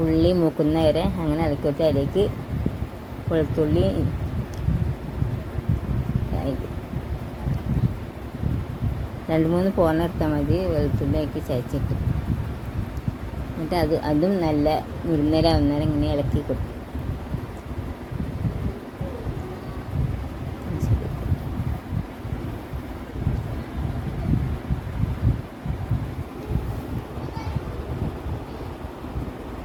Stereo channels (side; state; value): both; identical; correlation 1.00